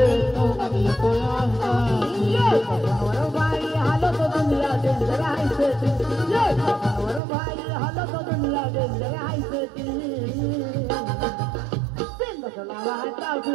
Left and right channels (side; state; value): left; drops out; at 7.2 s